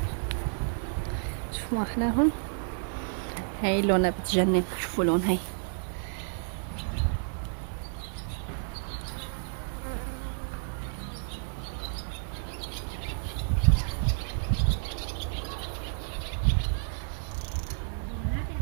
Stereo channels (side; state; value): left; silent; digital silence